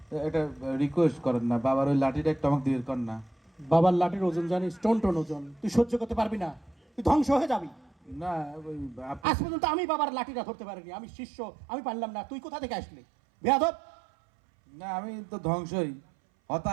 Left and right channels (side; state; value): left; drops out; at 9.2 s